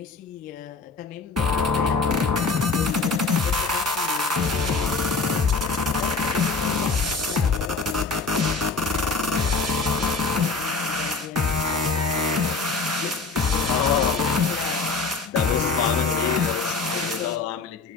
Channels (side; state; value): right; quieter; 4.1 dB